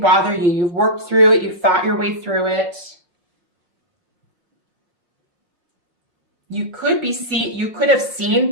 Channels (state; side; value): late; left; 5.6 ms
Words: you. You've worked through it. You've thought your way through it. You could have